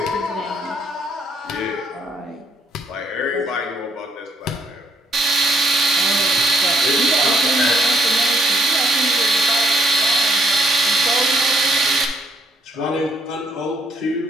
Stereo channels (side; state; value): both; normal; correlation 0.69